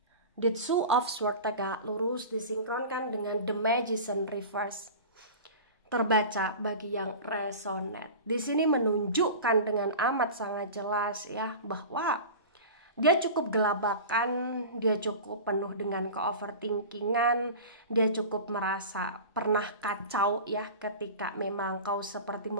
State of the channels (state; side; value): inverted; both; correlation -0.33